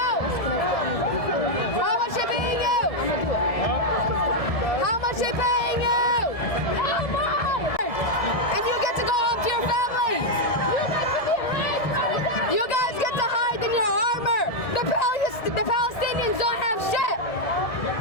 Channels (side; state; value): right; late; 1.7 ms